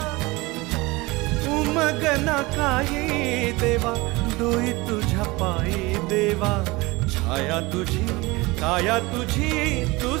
उमगना काही देवा, डोई तुझ्या पायी देवा, छाया तुझी काया तुझी,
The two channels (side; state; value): left; quieter; 22.6 dB